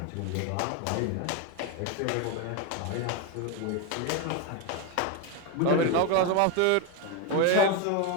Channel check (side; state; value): both; different; correlation 0.02